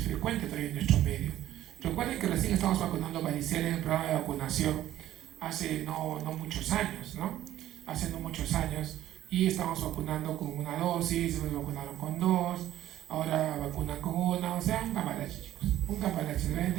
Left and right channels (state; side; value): quieter; left; 13.1 dB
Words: frecuente todavía en nuestro medio. Recuerden que recién estamos vacunando varicela en el programa de vacunación hace no muchos años, ¿no? Hace no muchos años, y estamos vacunando con una dosis, nos vacunaron con 2, ahora vacunan con 1, o sea, un cambalache, chicos, un cambalache.